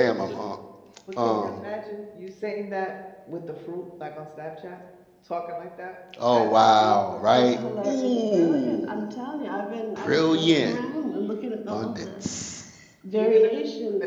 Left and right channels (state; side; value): identical; both; correlation 1.00